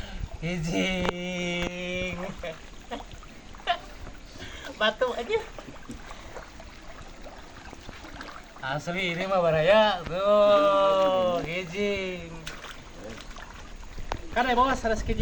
kijing. Batu aja. Asli ini mah baraya tuh kijing. Kan bos sanes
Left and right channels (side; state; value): both; identical; correlation 1.00